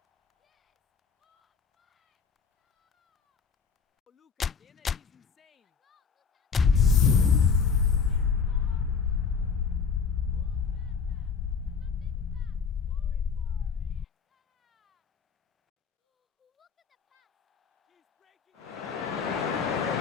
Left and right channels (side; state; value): right; quieter; 5.8 dB